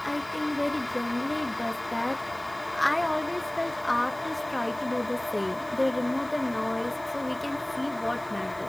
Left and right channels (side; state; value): left; noise; hiss, 24 dB below the sound